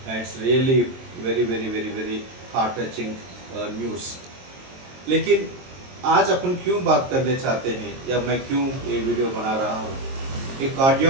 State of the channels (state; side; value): late; left; 22 ms